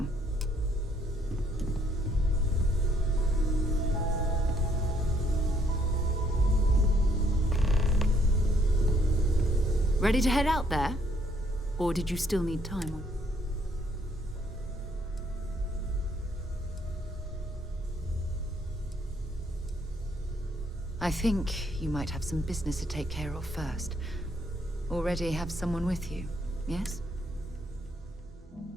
Ready to head out there? Or did you still need time? I think you might have some business to take care of first. Already have someone with you, yes?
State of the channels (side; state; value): both; normal; correlation 0.68